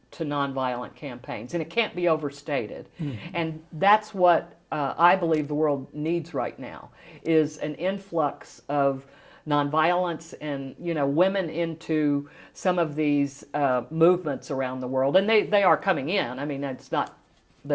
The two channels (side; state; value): both; identical; correlation 1.00